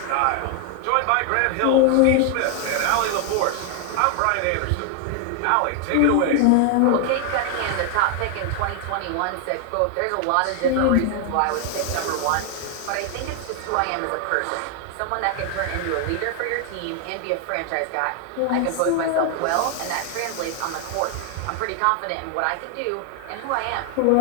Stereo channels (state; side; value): different; both; correlation 0.00